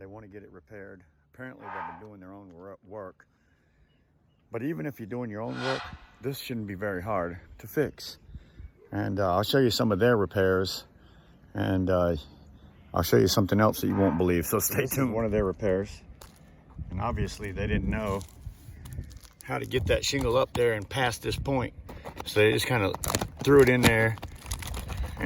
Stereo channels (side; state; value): both; identical; correlation 1.00